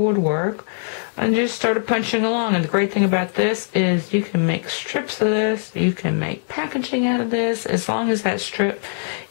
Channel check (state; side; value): silent; right; digital silence